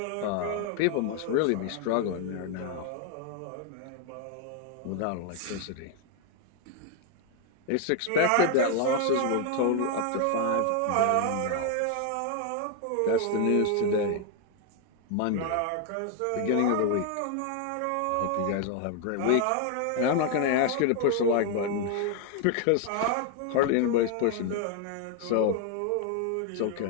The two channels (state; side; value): different; both; correlation 0.00